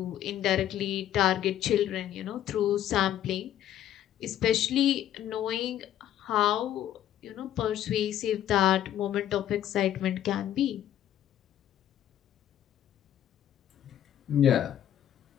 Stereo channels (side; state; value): right; quieter; 11.3 dB